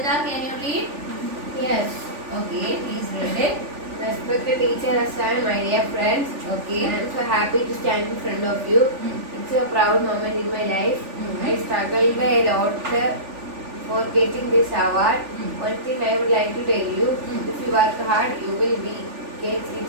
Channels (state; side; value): late; left; 3.4 ms